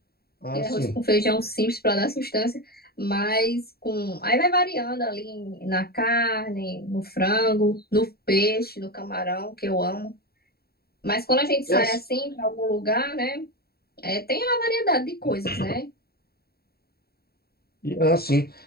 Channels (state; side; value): late; right; 0.45 ms